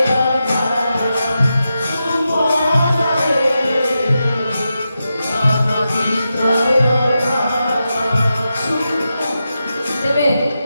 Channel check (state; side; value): inverted; both; correlation -0.89